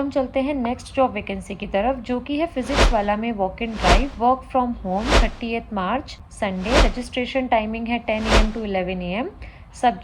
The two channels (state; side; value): identical; both; correlation 1.00